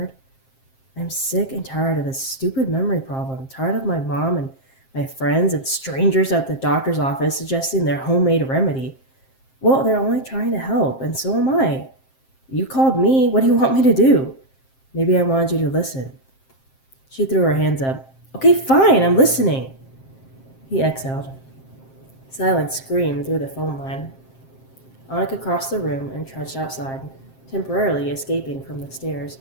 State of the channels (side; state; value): right; late; 7.6 ms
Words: I'm sick and tired of this stupid memory problem, tired of my mom and my friends and strangers at the doctor's office suggesting their homemade remedy. Well, they're only trying to help, and so am I. You called me. What do you want me to do? Maybe I wanted you to listen. She threw her hands up. Okay, fine, I'm listening. He exhaled. Silence screamed through the phone line. Annika crossed the room and trudged outside, temporarily escaping from the stairs.